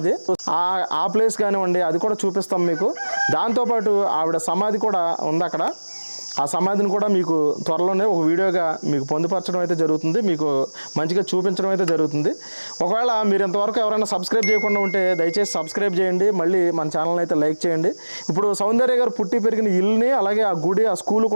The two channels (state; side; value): inverted; both; correlation -1.00